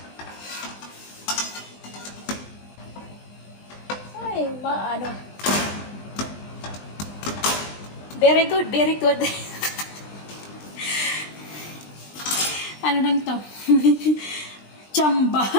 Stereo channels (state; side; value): late; right; 20 ms